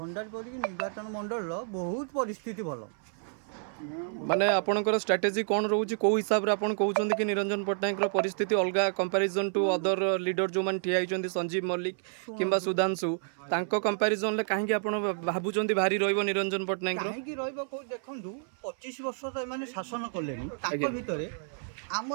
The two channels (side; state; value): left; silent; 58 dB below the other